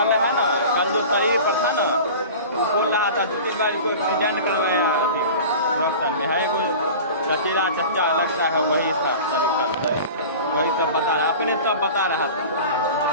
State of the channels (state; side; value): inverted; both; correlation -0.36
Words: है ना, कल जो शरीर पर था ना, वो बोल रहा था 2-3 बार कोई एक्सीडेंट कर रहे हैं डॉक्टर में है, कोई चचेरा चच्चा लगता है, वही था वही सब बता रहा, अपने सब बता रहा था